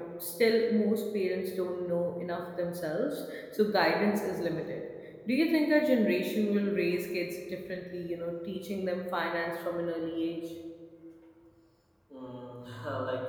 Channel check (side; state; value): both; identical; correlation 1.00